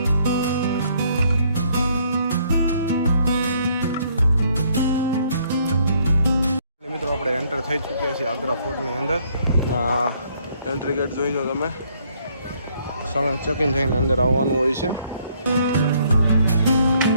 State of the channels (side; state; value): both; inverted; correlation -0.67